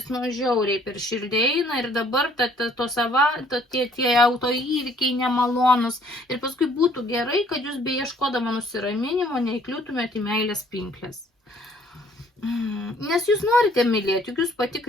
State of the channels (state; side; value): normal; both; correlation 0.60